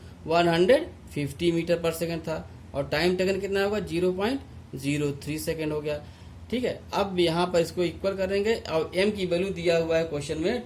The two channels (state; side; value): identical; both; correlation 1.00